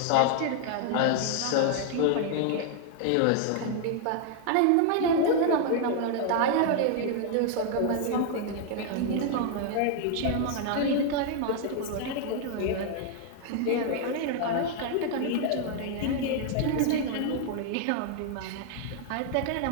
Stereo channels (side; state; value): both; different; correlation 0.00